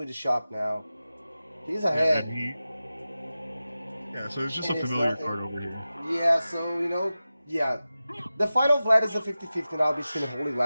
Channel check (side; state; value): both; inverted; correlation -0.94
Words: the shop now. He's Yeah, ahead. so it's just a And it's familiar nothing. card over here. Yeah, so, you know, yeah. The final Vlad is a 50-50 now between the Holy